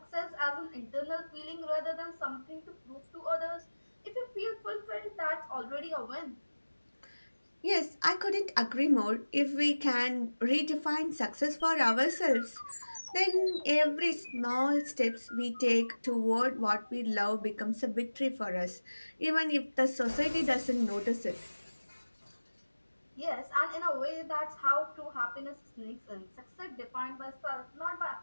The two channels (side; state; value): both; inverted; correlation -1.00